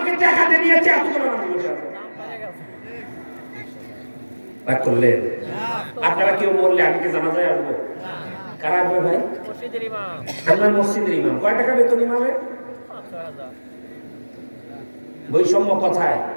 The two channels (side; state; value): both; inverted; correlation -1.00